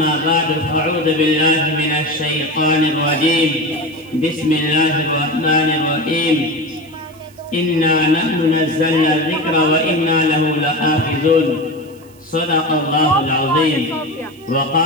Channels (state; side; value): noise; right; hiss, 28 dB below the sound